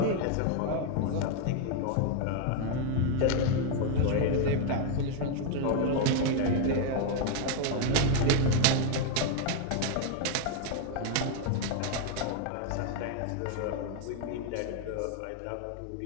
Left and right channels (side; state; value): both; different; correlation 0.00